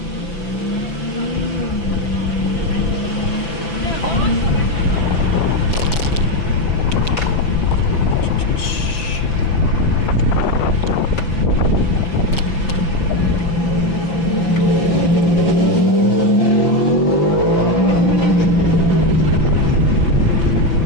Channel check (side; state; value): right; late; 6.0 ms